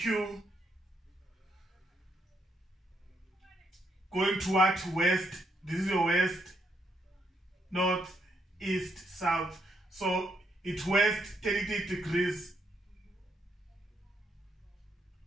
going toward west. This is your west, north, east, south. So it's west 30 degrees.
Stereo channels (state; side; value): normal; both; correlation 0.76